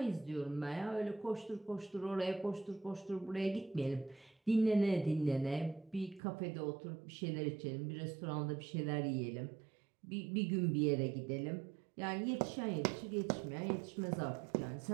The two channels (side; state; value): left; drops out; at 6.2 s